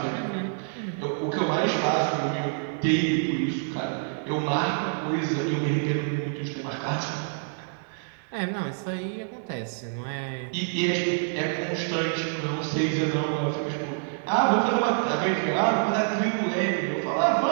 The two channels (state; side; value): silent; left; digital silence